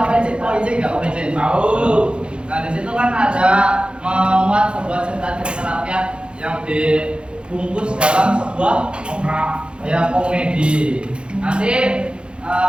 OIC enggak OPC? Tahu. Nah, di situ kan ada memuat sebuah cerita-cerita rakyat yang dibungkus dalam sebuah ya komedi. Nanti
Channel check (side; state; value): left; late; 0.055 ms